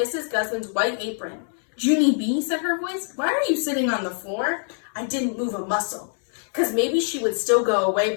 Guzman's white apron. Junie B, said her voice, why are you sitting on the floor? I didn't move a muscle, because maybe she would still go away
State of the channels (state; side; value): silent; right; digital silence